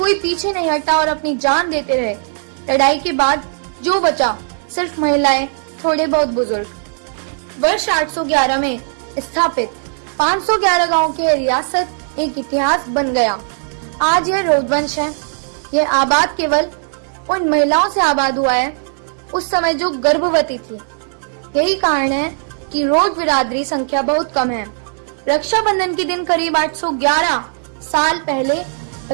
पीछे नहीं हटा और अपनी जान देते रहे। लड़ाई के बाद जो बचा सिर्फ महिलाएं, थोड़े बहुत बुजुर्ग। वर्ष 811 में स्थापित 511 गांव की रियासत एक इतिहास बन गया। आज यह रोडवंश है। यह आबाद केवल उन महिलाओं से आबाद हुआ है उस समय जो गर्भवती थी। यही कारण है कि रोड बिरादरी संख्या बहुत कम है। रक्षाबंधन के दिन करीब 811 साल पहले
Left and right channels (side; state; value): left; silent; digital silence